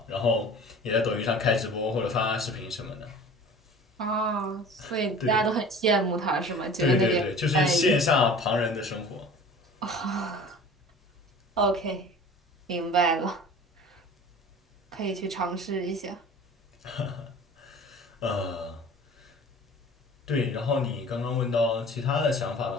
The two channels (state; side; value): normal; both; correlation 0.42